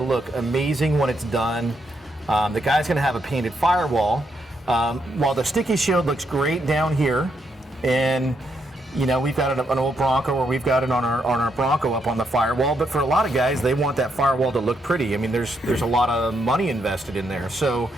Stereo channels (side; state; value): both; normal; correlation 0.78